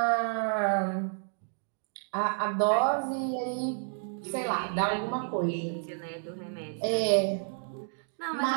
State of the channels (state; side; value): silent; left; 58 dB below the other